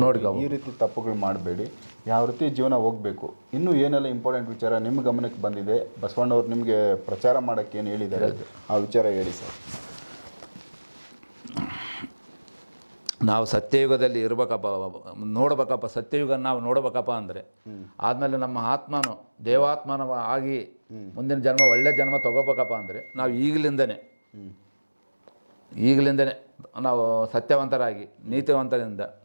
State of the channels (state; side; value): inverted; both; correlation -1.00